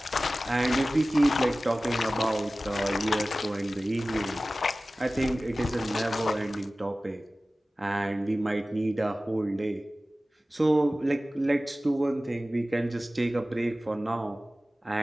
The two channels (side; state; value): both; normal; correlation 0.97